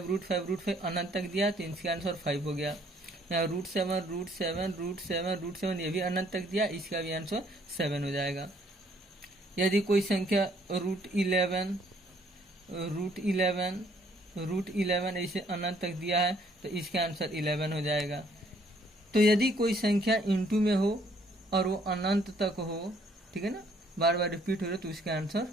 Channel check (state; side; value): normal; both; correlation 0.64